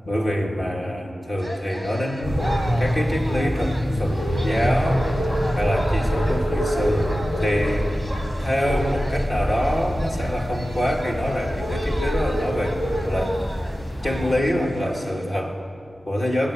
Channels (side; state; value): both; normal; correlation 0.95